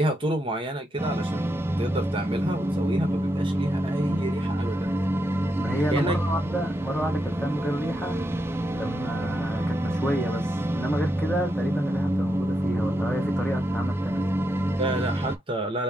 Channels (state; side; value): normal; both; correlation 0.83